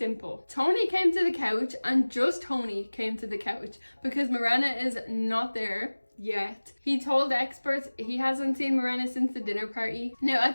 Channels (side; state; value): both; inverted; correlation -1.00